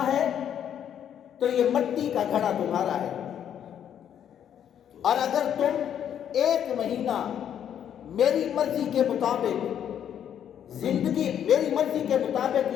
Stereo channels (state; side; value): quieter; right; 9.4 dB